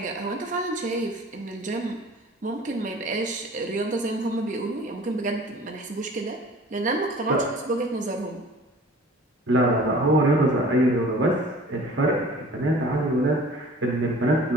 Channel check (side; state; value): both; normal; correlation 0.46